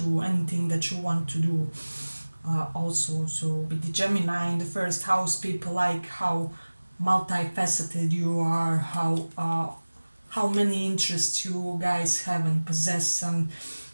anything that you want to do. Also, so with the Gemini in the 1st house, people like how multifaceted you are, how many interests you guys have and possess, and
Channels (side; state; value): both; inverted; correlation -1.00